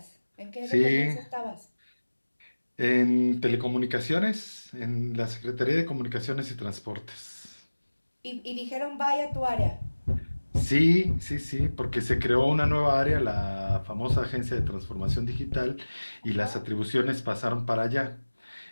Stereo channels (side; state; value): both; inverted; correlation -1.00